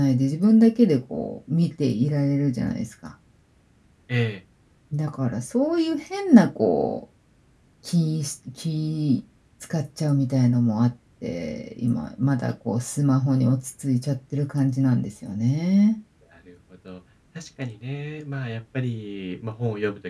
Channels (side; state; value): both; identical; correlation 1.00